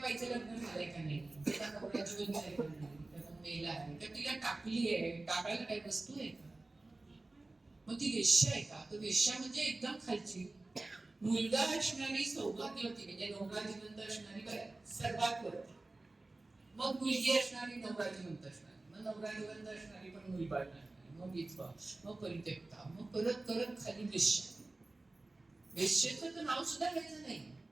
लग्न झालंय का नाही, त्याचा नवरा जीवन झालंय का नाही, त्याचा मेला आहे का, तिला टाकली आहे, टाकायला काही वस्तू आहे का, मग ती वेश्या आहे का. तर वेश्या म्हणजे एकदम खालची, मुलगा असणारी सौभाग्यवती म्हणजे नवरा जिवंत असणारी बाई सर्वात वरती. मग मुलगी असणारी नवरा जिवंत असणारी, मग नवरा जिवंत असणारी पण मुलबाळ नसणारी, मग विधवा, मग परित्यक्ता, मग करत करत खाली वेश्या. वेश्येचं तर नाव सुद्धा घ्यायचं नाही.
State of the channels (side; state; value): left; quieter; 3.1 dB